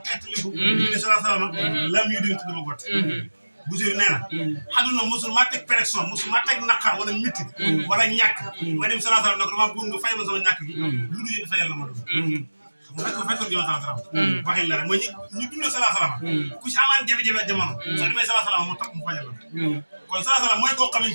xetliku ministre sallallahu alaihi wasallam lam yudin tuduma gott Boussirou nee na xaduna musul ma teg pression musul ma teg naqar wala métti wala ñàkk ma dem sallallahu alayhi wasallam ne ko dama bëgg nga fayal ma sama ñàkk gi lu dul yéen fayal la ma doon fekkoon jëma sallallahu alayhi wasallam waxin la rek mooy ñu dundee sallallahu alayhi wasallam ku ci amaan jafe-jafe jamono soo demee sallallahu alayhi wasallam mu tax mu fajal la kon sallallahu alayhi wasallam mooy koo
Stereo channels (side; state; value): both; inverted; correlation -1.00